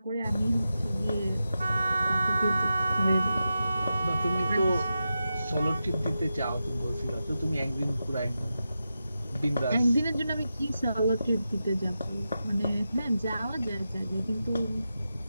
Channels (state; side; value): inverted; both; correlation -0.90